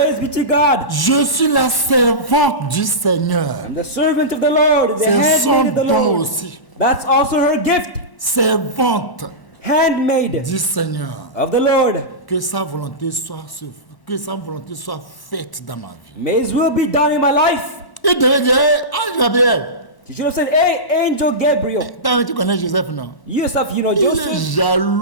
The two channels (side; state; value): right; late; 1.1 ms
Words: be to God. Je suis la servante du Seigneur. The servant of the Lord. The C'est son handmaid of the don Lord. aussi. That's also her gift. Servante Handmaid du Seigneur. of the Lord. Que sa volonté soit faite dans ma vie. May His will be done in my life. Il devait dire: Ange Gabriel, You should have said, Hey, Angel Gabriel. tu connais Joseph, non? Yourself, you know Il est Joseph.